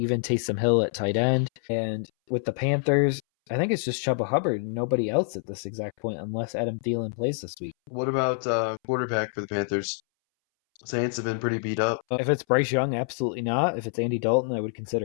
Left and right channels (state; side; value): silent; right; 61 dB below the other